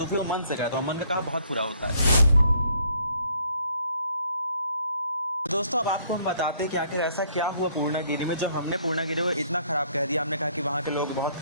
फिर वो मन से कहता, और मन का कहा बहुत बुरा होता है। दोस्तों अब आपको हम बताते हैं कि आखिर ऐसा क्या हुआ पूर्णागिरि में, जो हमने पूर्णागिरि को इतना ख़राब कह दिया। हमने कहा कि वहाँ के लोग बहुत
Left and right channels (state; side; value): inverted; both; correlation -0.64